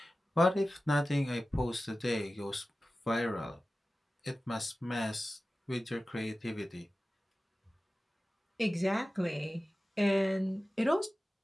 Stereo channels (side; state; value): both; normal; correlation 0.95